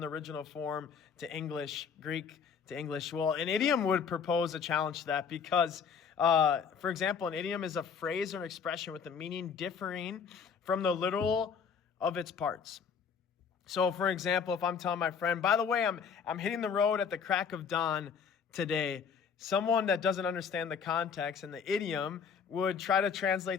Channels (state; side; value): quieter; right; 6.5 dB